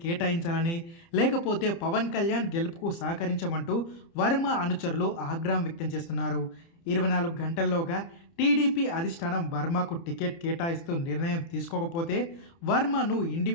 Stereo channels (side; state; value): right; late; 30 ms